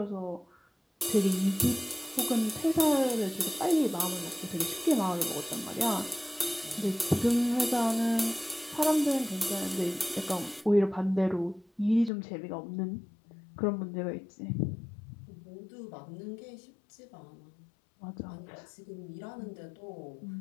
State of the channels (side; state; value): right; drops out; at 12.1 s